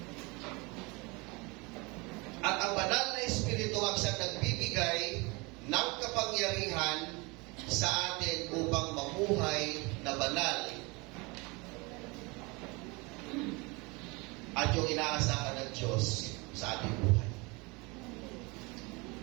At ang banal na Espiritu ang siyang nagbibigay ng kapangyarihan sa atin upang mamuhay na banal at yung inaasahan ng Diyos sa ating buhay.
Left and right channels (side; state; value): left; quieter; 26.7 dB